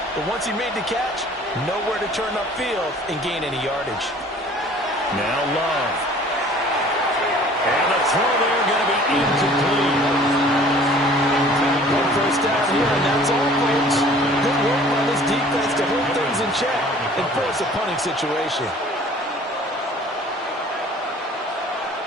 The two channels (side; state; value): both; normal; correlation 0.50